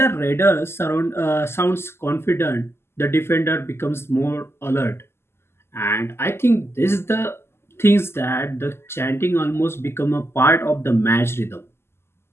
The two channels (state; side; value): late; right; 0.12 ms